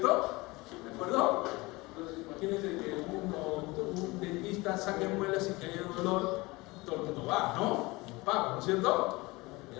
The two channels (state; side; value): quieter; right; 22.7 dB